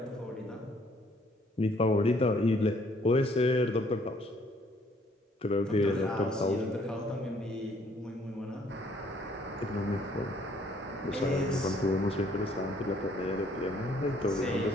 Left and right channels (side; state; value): both; normal; correlation 0.64